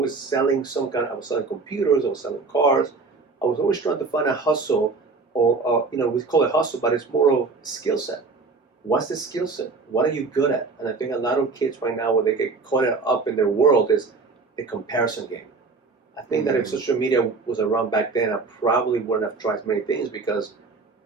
selling I was selling computers. I was selling cars. I was always trying to find a hustle, or we call it hustle, but it's more of skill set. What's the skill set? What are you good at? And I think a lot of kids right now, where they get caught up in their world, is the comparison game. I think that if social media was around back then, I probably wouldn't have tried many things, because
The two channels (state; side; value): quieter; left; 4.2 dB